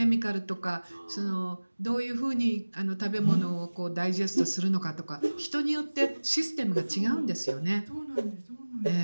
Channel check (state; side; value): inverted; both; correlation -1.00